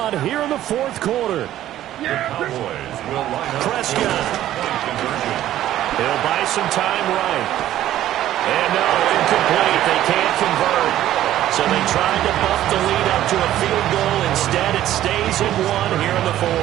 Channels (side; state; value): left; quieter; 13.0 dB